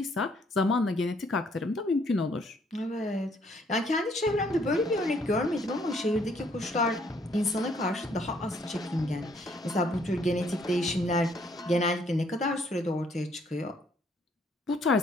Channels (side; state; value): both; normal; correlation 0.66